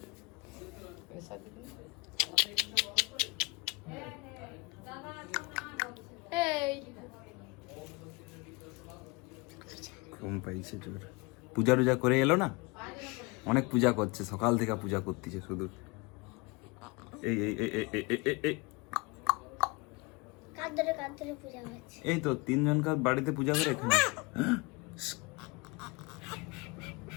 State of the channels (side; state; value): right; quieter; 27.1 dB